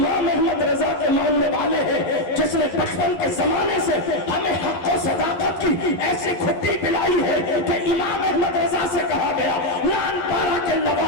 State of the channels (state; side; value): late; right; 11 ms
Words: احمد رضا کے ماننے والے ہیں جس نے بچپن کے زمانے سے ہمیں حق و صداقت کی ایسی کھٹی پلائی ہے کہ امام احمد رضا سے کہا گیا لان پارا کے